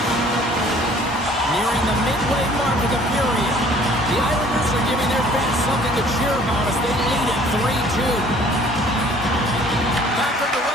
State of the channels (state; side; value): normal; both; correlation 0.54